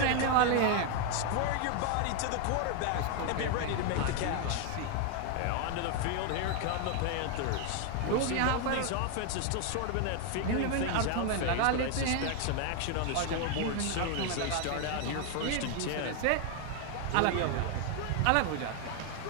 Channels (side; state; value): both; different; correlation 0.00